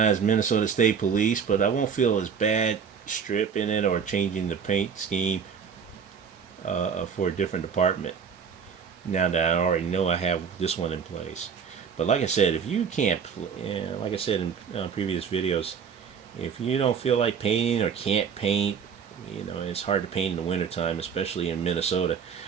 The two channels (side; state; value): left; quieter; 6.7 dB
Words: as Minnesota State Police, but I won't feel as bad stripping it or changing the paint scheme for a different department. Now that I already know I have this one in place. But like I said, if you can't, like I said in previous videos, if you don't feel like painting or can't paint, it's hard to paint in the wintertime, especially in Minnesota.